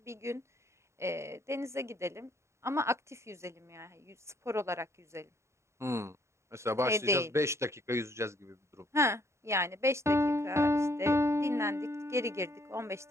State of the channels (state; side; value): late; left; 0.14 ms